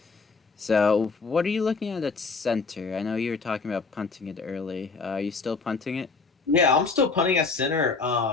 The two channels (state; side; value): quieter; right; 4.4 dB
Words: So what are you looking at center? I know you were talking about punting it early. Are you still punting it? Yeah, I'm still punting at center.